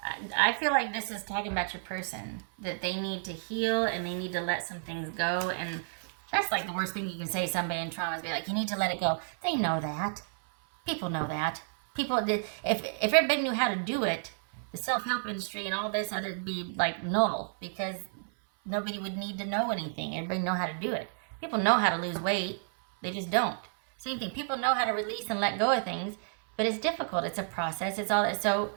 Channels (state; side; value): silent; left; 57 dB below the other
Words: I feel like this is talking about your person, that they need to heal and they need to let some things go. And that's like the worst thing you can say to somebody in trauma is be like, you need to let it go. They know that. People know that. People did. If everybody knew how to do it, the self-help industry and all this other be like null, because nobody would need to know anything. Everybody know how to do it. People know how to lose weight. They just don't. Same thing. People know how to release and let go of things, but it's difficult. It's a process. It's all that. So